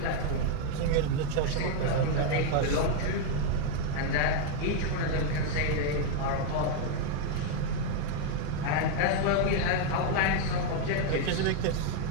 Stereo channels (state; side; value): different; both; correlation 0.00